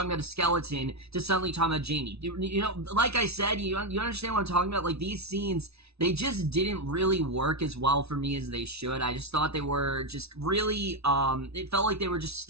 about a skeleton to suddenly talking about Jamie. You know, like I said, you understand what I'm talking about? Like, these scenes, they just didn't really work as well for me as they should. I just thought they were just really, it felt like they were just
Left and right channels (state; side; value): late; left; 0.79 ms